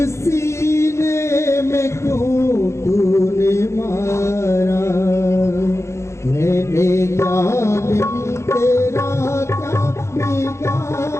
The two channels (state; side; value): late; right; 0.13 ms